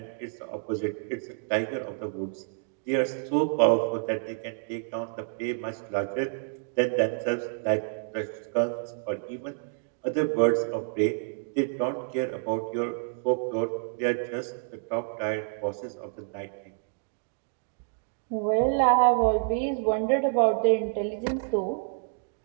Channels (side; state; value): left; silent; digital silence